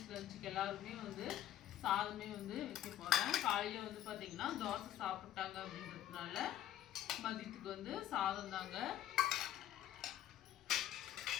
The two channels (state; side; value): quieter; right; 12.2 dB